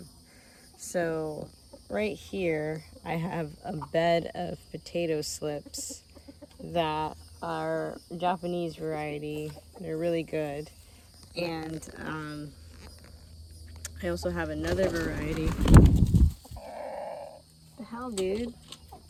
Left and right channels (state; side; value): identical; both; correlation 1.00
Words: So right here I have a bed of potato slips that are Japanese variety. They're really good. And I also have another variety. What the hell, dude?